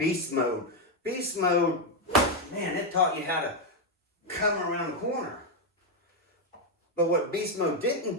mode. Beast mode, man, it taught you how to come around the corner. But what Beast Mode didn't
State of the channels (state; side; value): normal; both; correlation 0.04